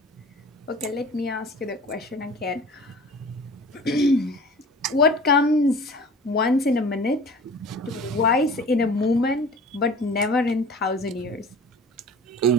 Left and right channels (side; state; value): both; normal; correlation 0.43